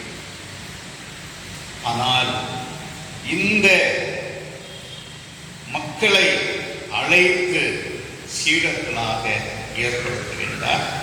ஆனால் இந்த மக்களை அழைத்து சீடர்களாக ஏற்படுத்துகின்றார்.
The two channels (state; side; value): identical; both; correlation 1.00